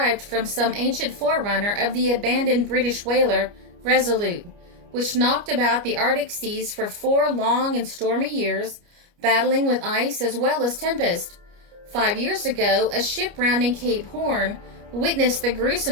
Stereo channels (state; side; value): late; left; 29 ms